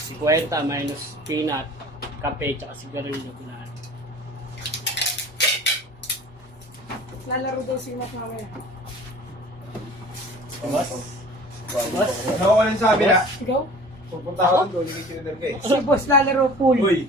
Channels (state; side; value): normal; both; correlation 0.45